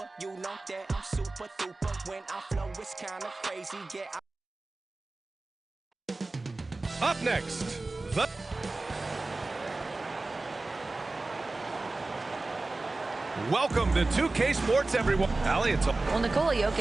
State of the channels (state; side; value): quieter; left; 3.2 dB